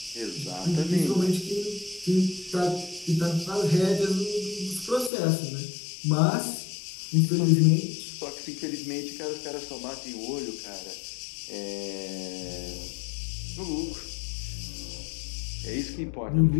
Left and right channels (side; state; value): right; drops out; at 5.1 s